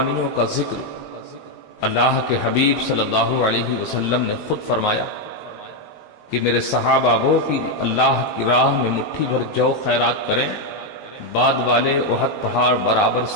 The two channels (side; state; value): right; late; 14 ms